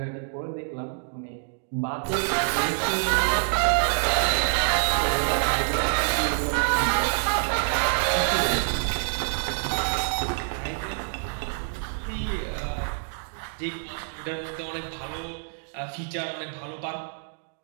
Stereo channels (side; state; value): left; silent; digital silence